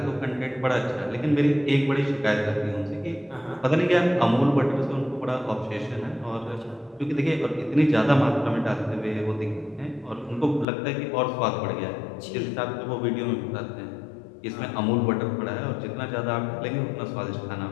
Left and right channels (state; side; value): drops out; right; at 10.7 s